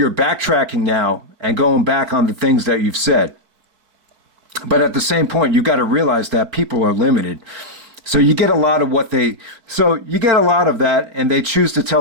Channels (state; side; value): late; left; 4.6 ms